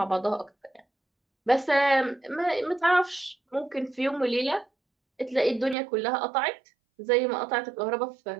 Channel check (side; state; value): left; drops out; at 5.8 s